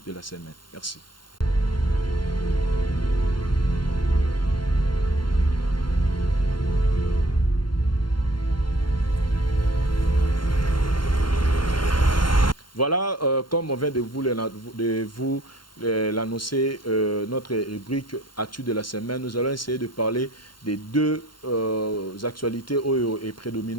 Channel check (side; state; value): right; late; 0.72 ms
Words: de la semaine. Merci. Voilà, comme on vient de vous l'annoncer, notre rubrique Actu de la semaine, nous allons essayer de parler des deux actualités Oyo et